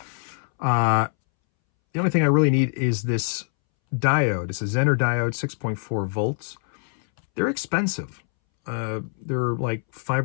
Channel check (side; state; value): right; silent; 63 dB below the other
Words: The only thing I really need is this diode. It's a Zener diode, 6.4 volts. They're expensive. They're like 5